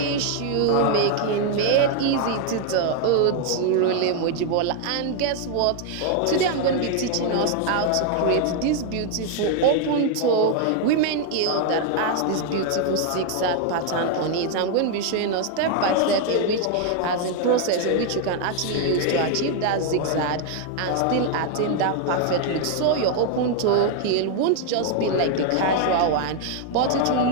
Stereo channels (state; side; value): different; both; correlation 0.00